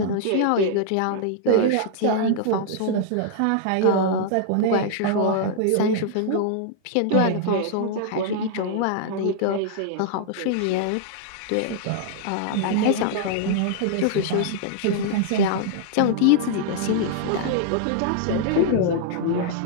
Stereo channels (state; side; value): different; both; correlation -0.01